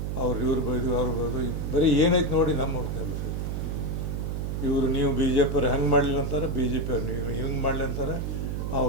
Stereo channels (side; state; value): right; noise; hum, 2 dB below the sound